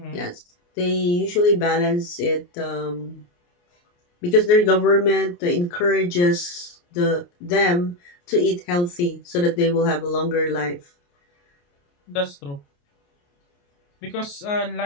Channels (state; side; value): late; right; 29 ms